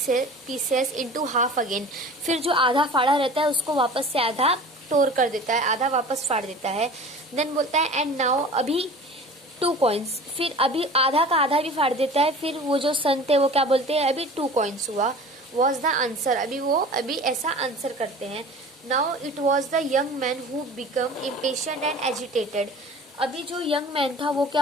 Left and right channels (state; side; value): normal; both; correlation 0.40